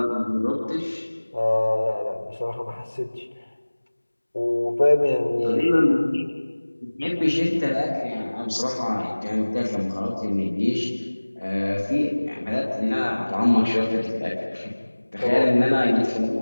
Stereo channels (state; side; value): inverted; both; correlation -1.00